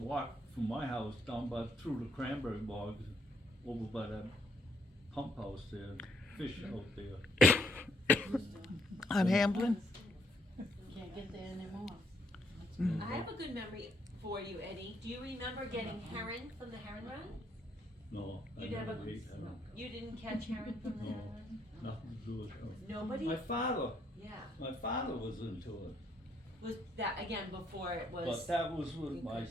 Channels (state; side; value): normal; both; correlation 0.71